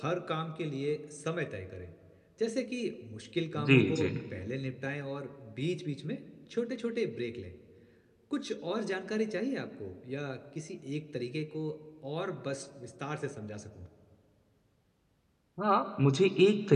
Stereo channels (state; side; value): identical; both; correlation 1.00